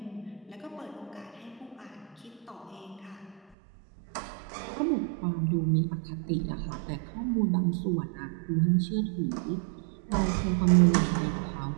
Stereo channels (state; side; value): drops out; left; at 3.6 s